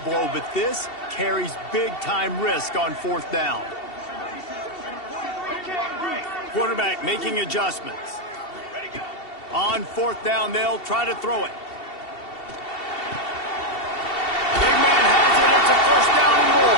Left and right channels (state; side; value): late; right; 2.7 ms